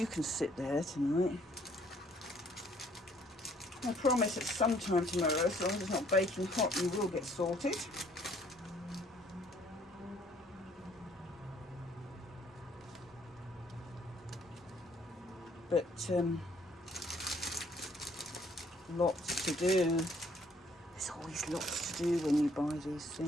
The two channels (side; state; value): both; normal; correlation 0.63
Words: can sit there tonight. I promise at some time tomorrow, as long as it's not baking hot, you will get sorted. But Lots to do. There's always lots to do when you buy these